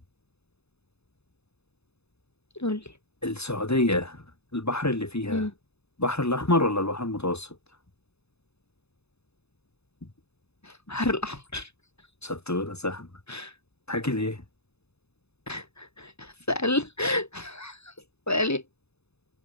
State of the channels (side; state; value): right; late; 0.79 ms